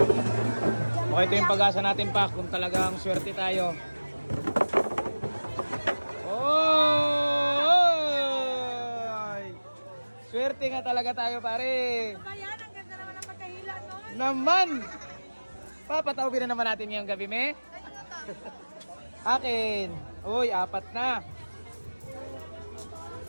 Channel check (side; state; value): both; inverted; correlation -1.00